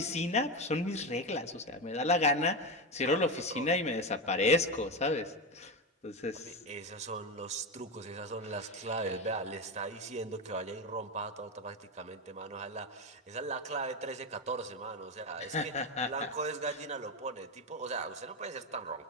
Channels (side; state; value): both; normal; correlation 0.16